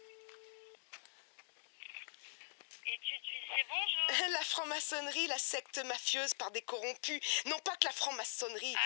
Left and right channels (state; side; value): silent; right; digital silence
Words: Étude d'huissier, bonjour. La franc-maçonnerie, la secte mafieuse par des corrompus. Non pas que la franc-maçonnerie.